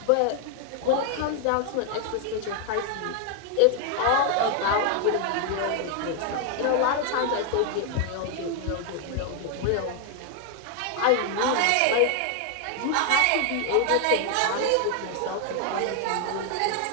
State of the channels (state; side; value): different; both; correlation 0.00